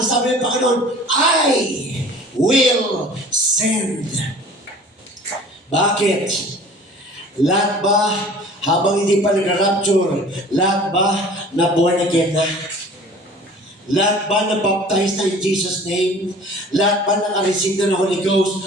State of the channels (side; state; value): both; normal; correlation 0.46